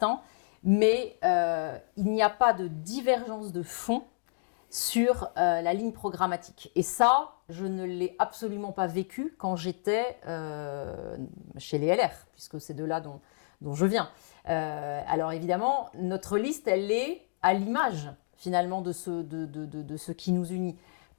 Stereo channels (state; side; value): silent; right; digital silence